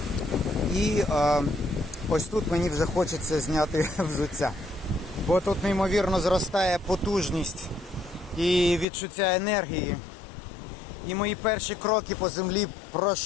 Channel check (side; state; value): right; drops out; at 8.8 s